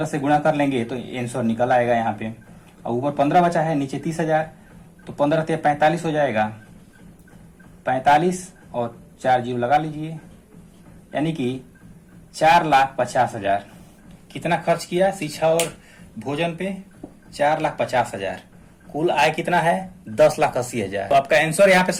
से गुणा कर लेंगे तो आंसर निकल आएगा यहाँ पे। और ऊपर 15 बचा है, नीचे 30,000, तो 15 से 45 हो जाएगा। 45 और 4 जीरो लगा लीजिए, यानी कि 4,50,000। कितना खर्च किया शिक्षा और भोजन पे 4,50,000। कुल आय कितना है 10,80,000। तो आपका आंसर यहाँ पे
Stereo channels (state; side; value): identical; both; correlation 1.00